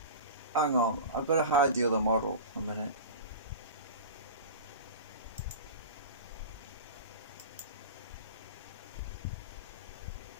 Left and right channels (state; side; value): inverted; both; correlation -0.31